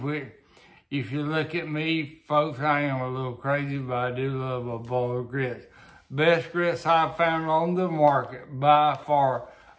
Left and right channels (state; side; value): identical; both; correlation 1.00